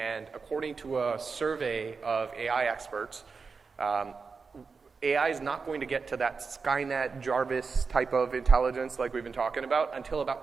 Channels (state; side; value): quieter; left; 4.9 dB